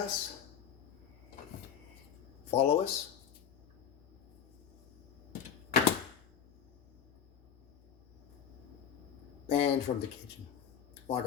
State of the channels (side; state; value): right; quieter; 8.3 dB